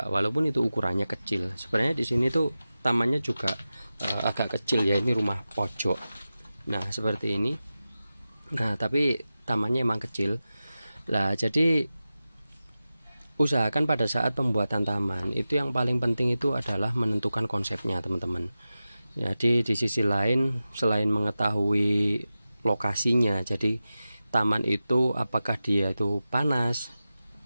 walaupun itu ukurannya kecil. Sebenarnya di sini tuh tamannya juga agak kecil ya, ini rumah pojok. Nah, seperti ini. Nah, tapi tamannya emang kecil. Lah, jadi usahakan pada saat pembuatan taman itu yang paling penting itu adalah menentukan konsepnya teman-teman. Jadi di sisi lain selain mengetahui lokasinya, jadi taman itu apakah dia itu panas,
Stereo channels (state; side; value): inverted; both; correlation -0.94